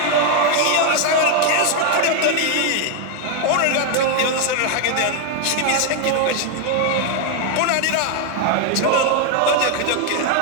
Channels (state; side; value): different; both; correlation 0.00